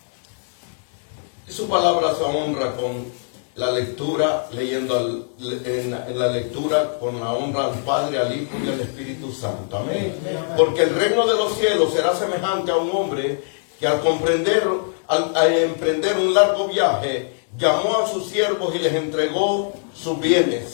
Y su palabra se honra con la lectura, leyendo en la lectura con la honra al Padre, al Hijo y al Espíritu Santo. Amén. Porque el reino de los cielos será semejante a un hombre que al emprender un largo viaje, llamó a sus siervos y les entregó sus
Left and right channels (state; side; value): silent; right; digital silence